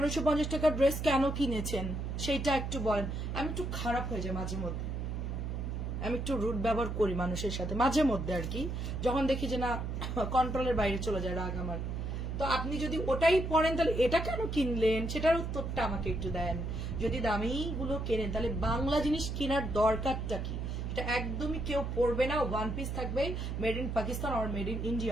টাকার ড্রেস কেন কিনেছেন সেইটা একটু বলেন। আমি একটু খারাপ হয়ে যায় মাঝে মধ্যে, আমি একটু রুড ব্যবহার করি মানুষের সাথে মাঝে মধ্যে আর কি, যখন দেখি যে না কন্ট্রোলের বাইরে চলে যায় রাগ আমার। তো আপনি যদি ওটাই পড়েন তাহলে এটা কেন কিনলেন সেটার উত্তরটা আমাকে একটু দেন। যদি দামি গুলো কেনেন তাহলে বাংলা জিনিস কেনার দরকারটা কি, এটা একদমই কেউ পড়বে না, ওয়ান পিস থাকবে মেড ইন পাকিস্তান আর মেড ইন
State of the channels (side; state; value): right; noise; hum, 3 dB below the sound